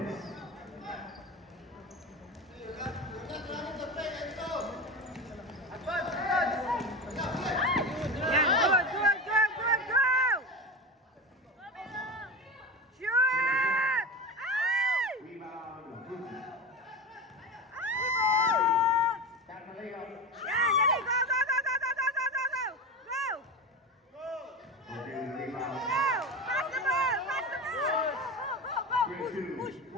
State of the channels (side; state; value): both; normal; correlation 0.24